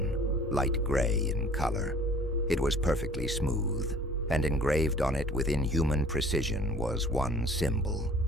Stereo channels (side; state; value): both; normal; correlation 0.51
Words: light gray in color. It was perfectly smooth, and engraved on it with inhuman precision was one symbol,